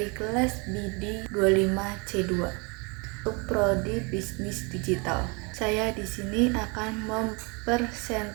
kelas BD 25C2 untuk prodi bisnis digital. Saya di sini akan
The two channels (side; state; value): left; quieter; 30.6 dB